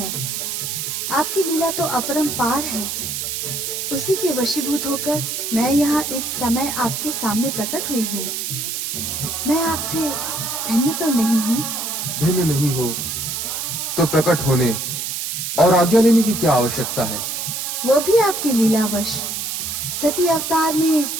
आपकी लीला तो अपरंपार है। उसी के वशीभूत होकर मैं यहाँ इस समय आपके सामने प्रकट हुई हूँ। मैं आपसे भिन्न तो नहीं हूँ? भिन्न नहीं हो तो प्रकट होने और आज्ञा लेने की क्या आवश्यकता है? वो भी आपकी लीलावश। सती अवतार में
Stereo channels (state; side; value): noise; right; hiss, 3 dB below the sound